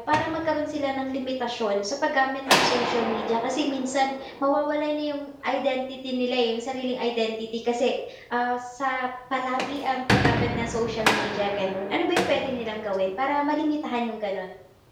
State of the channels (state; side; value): identical; both; correlation 1.00